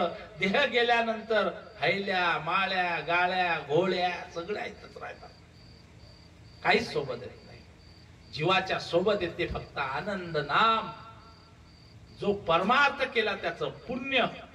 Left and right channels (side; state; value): both; identical; correlation 1.00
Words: देह गेल्यानंतर हैल्या माळ्या गाळ्या घोळ्या सगळ्या इथंच राहतात. काहीच सोबत येत नाही. जीवाच्या सोबत येते फक्त आनंद नाम. जो परमार्थ केला त्याचं पुण्य.